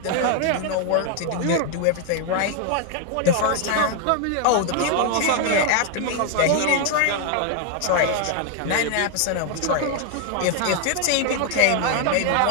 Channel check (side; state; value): both; different; correlation 0.00